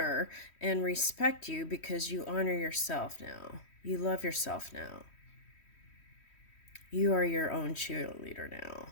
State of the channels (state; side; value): late; right; 3.1 ms